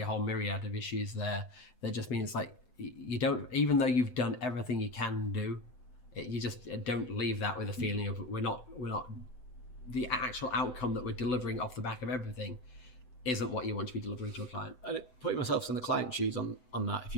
a whole myriad of issues there that just mean it's like, you don't, even though you've done everything you can do, you just don't leave that with a feeling of we're not the actual outcome that we're delivering off the back of everything isn't what you want to be delivering to a client. And putting myself in the client shoes on that, if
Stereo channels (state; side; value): late; right; 7.9 ms